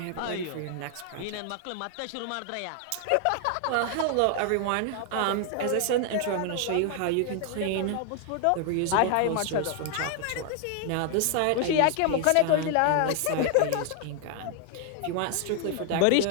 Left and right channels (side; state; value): both; different; correlation 0.00